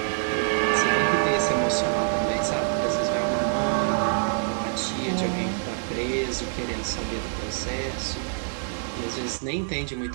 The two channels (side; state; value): left; silent; digital silence